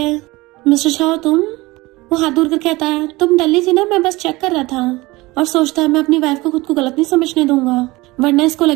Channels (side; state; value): left; quieter; 21.2 dB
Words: मिस्टर शाह तुम, वो हाथ दूर कर कहता है तुम टल्ली थी ना, मैं बस चेक कर रहा था, और सोचता है मैं अपनी वाइफ को खुद को गलत नहीं समझने दूंगा वरना इसको